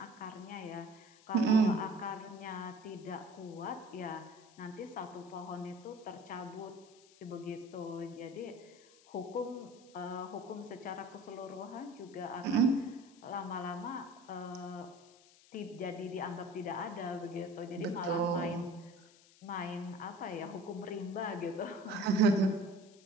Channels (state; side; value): noise; left; hiss, 25 dB below the sound